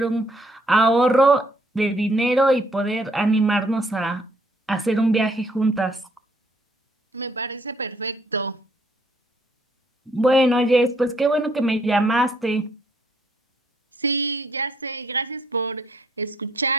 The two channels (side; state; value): both; normal; correlation 0.67